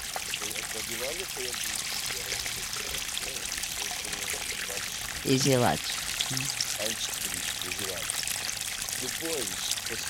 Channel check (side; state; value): both; identical; correlation 1.00